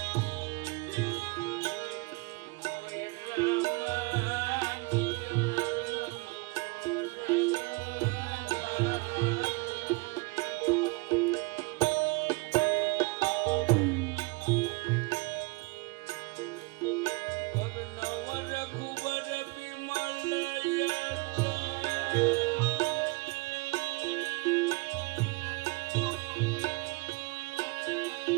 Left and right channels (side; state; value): left; quieter; 26.9 dB